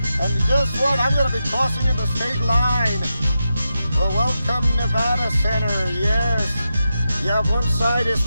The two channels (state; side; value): inverted; both; correlation -0.89